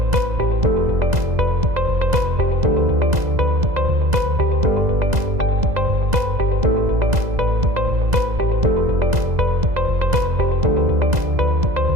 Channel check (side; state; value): left; late; 2.0 ms